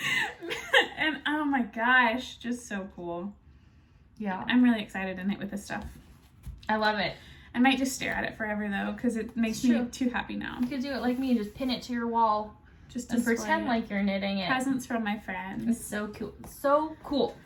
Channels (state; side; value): identical; both; correlation 1.00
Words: And oh my gosh, just so cool. Yeah. I'm really excited to knit with this stuff. I love it. I might just stare at it forever though, because it makes me too happy now. You could do it like me and just pin it to your wall. Just and pretend like you're knitting it. Presents from my friends. It's so cool. So cool.